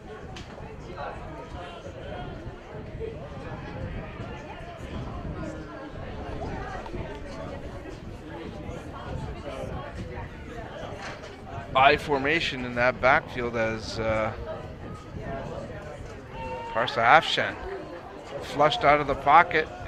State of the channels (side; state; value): both; identical; correlation 1.00